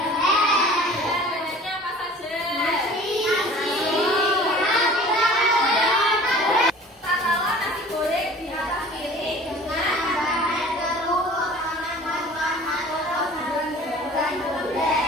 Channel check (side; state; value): both; normal; correlation 0.45